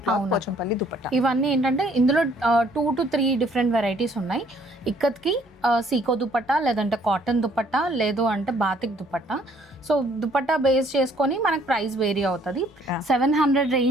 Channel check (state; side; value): normal; both; correlation 0.62